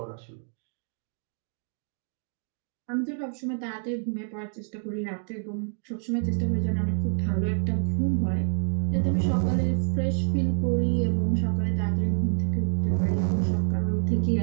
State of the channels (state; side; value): silent; left; 60 dB below the other